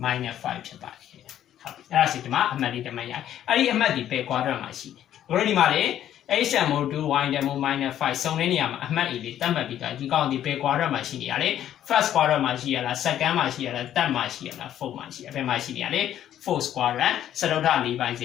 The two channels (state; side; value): quieter; right; 11.2 dB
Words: -5 ဖြစ်ပါတယ်ဟုတ်ပြီအဲ့ဒါစီဒီမှာအမှတ်လေးတစ်မှတ်ရအဲ့ဒီအမှတ်ဒီဘယ် quadrant မှာရှိတယ်တို့ဒီမှာလေ x တန်မိုး2 y တန်မိုး -5 စုံတဲ့နေရာမှာအမှတ် A လေးသတ်မှတ်ပြီးတော့ဒီကောင်ဒီဘယ် quadrant မှာရှိနေရလဲ first quadrant မှာရှိရလား second မှာရှိရလား third မှာရှိရလား fourth မှာရှိရဘယ်မှာရှိနေရလဲ fourth quadrant စတုတ္ထ၄ပိုင်းစ